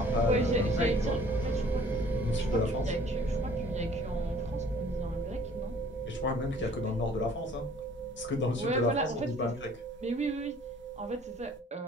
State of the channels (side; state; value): both; normal; correlation 0.54